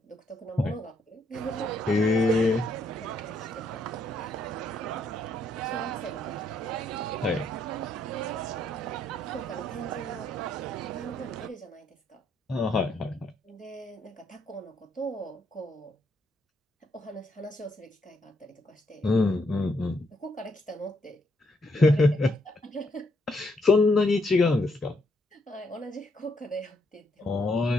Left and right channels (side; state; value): both; normal; correlation 0.74